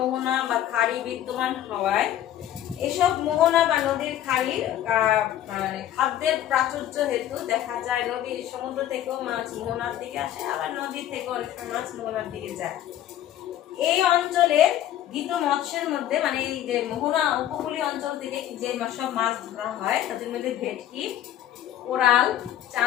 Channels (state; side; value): quieter; right; 11.9 dB